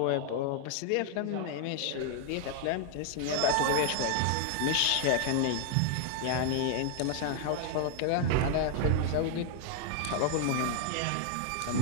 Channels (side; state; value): both; different; correlation 0.00